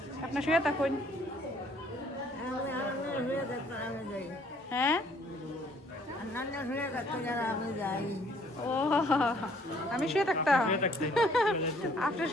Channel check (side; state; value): both; normal; correlation 0.61